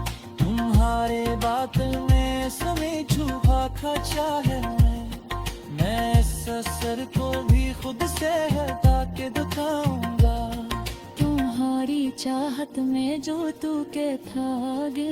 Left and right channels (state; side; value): identical; both; correlation 1.00